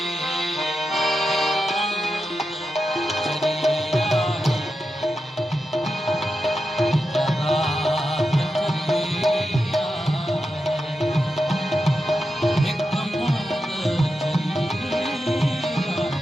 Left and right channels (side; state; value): both; normal; correlation 0.89